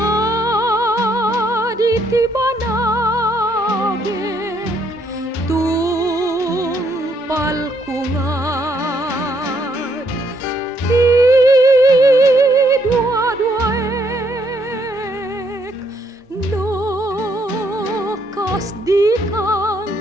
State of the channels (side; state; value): both; normal; correlation 0.71